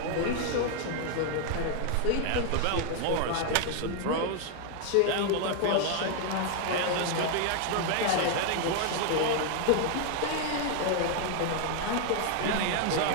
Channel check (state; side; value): different; both; correlation 0.00